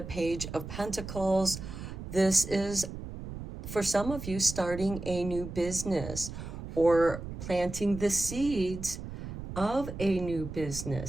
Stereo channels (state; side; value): noise; right; rumble, 9 dB below the sound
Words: Page of Pentacles. This is, for some of you, starting a new business or planting the seeds of a new